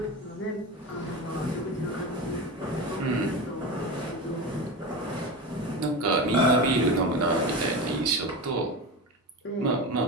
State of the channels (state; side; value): normal; both; correlation 0.24